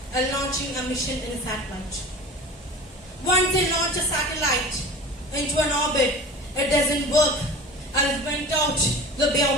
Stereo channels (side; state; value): both; normal; correlation 0.36